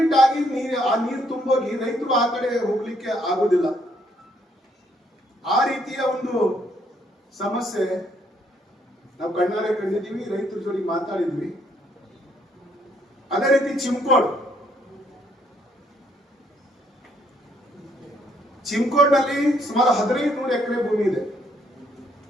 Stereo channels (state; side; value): normal; both; correlation 0.69